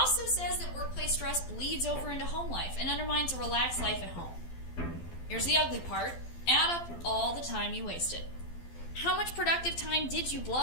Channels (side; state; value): right; late; 12 ms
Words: says that workplace stress bleeds over into home life and undermines a relaxed life at home. Here's the ugly part. Add up all the time you wasted. How much productive time did you